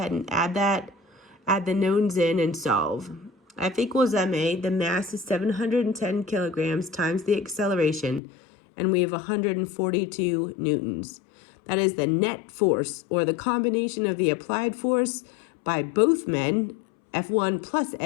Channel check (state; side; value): drops out; right; at 8.2 s